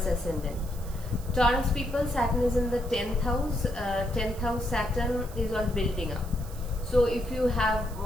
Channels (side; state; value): right; noise; hiss, 19 dB below the sound